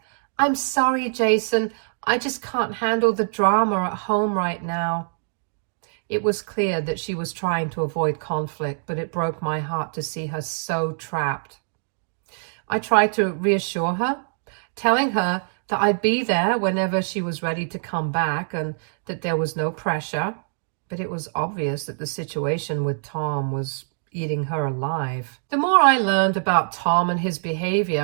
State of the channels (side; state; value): left; silent; digital silence